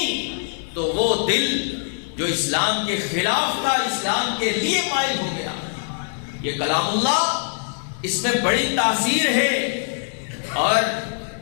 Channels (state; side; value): silent; right; 63 dB below the other